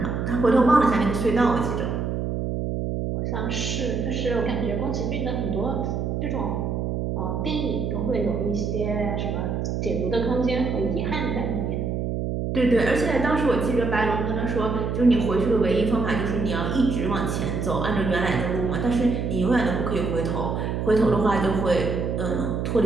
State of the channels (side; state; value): right; noise; hum, 1 dB below the sound